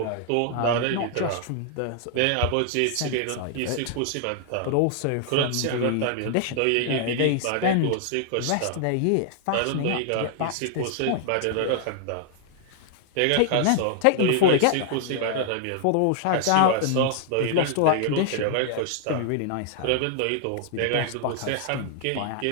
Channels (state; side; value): different; both; correlation 0.00